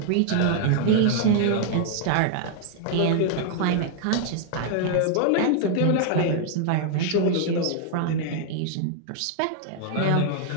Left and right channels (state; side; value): different; both; correlation 0.00